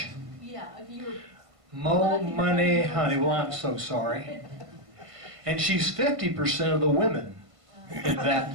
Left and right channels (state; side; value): late; left; 1.5 ms